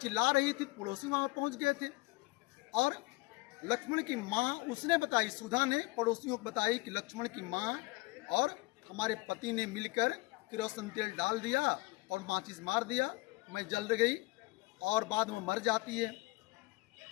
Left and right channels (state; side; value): quieter; right; 23.2 dB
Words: रही थी, पड़ोसी वहाँ पहुँच गए थे और लक्ष्मण की माँ उसने बताई, सुधा ने पड़ोसियों को बताई कि लक्ष्मण की माँ और हमारे पति ने मिलकर केरोसिन तेल डाल दिया और माचिस मार दिया, मैं जल गई और बाद में मर जाती है।